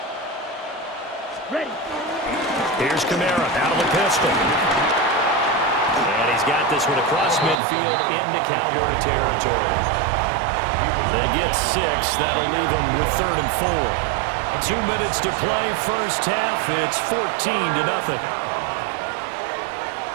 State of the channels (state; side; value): drops out; left; at 7.6 s